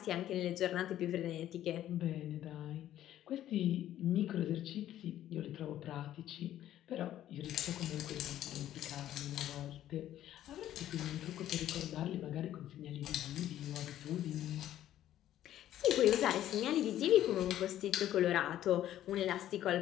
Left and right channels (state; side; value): quieter; right; 12.4 dB